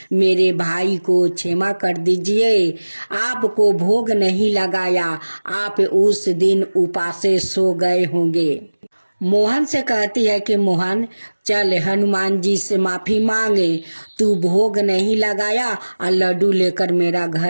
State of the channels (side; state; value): both; inverted; correlation -1.00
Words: मेरे भाई को क्षमा कर दीजिए, आपको भोग नहीं लगाया, आप उस दिन उपासे सो गए होंगे। मोहन से कहती है कि मोहन, चल हनुमान जी से माफी मांगे, तू भोग नहीं लगाया और लड्डू लेकर मेरा